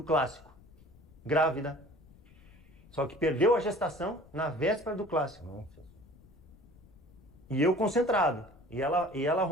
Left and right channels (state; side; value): noise; left; rumble, 25 dB below the sound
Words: clássico, grávida. Só que perdeu a gestação na véspera do clássico. E eu concentrado. E ela